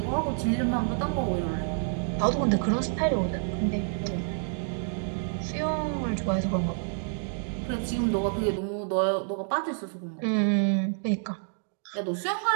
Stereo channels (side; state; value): left; silent; digital silence